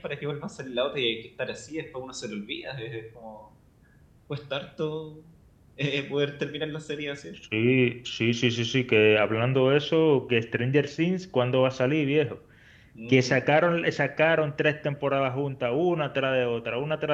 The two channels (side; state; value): both; identical; correlation 1.00